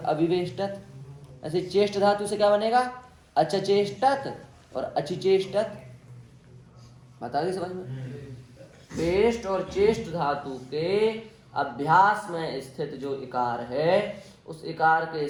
ऐसे चेष्ट धातु से क्या बनेगा, अचचेष्टत और अचिचेष्टत। बता दी समझ में। पेष्ट और चेष्ट धातु के अभ्यास में स्थित जो इकार है उस इकार के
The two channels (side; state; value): both; identical; correlation 1.00